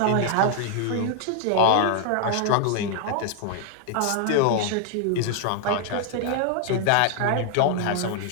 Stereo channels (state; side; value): different; both; correlation 0.00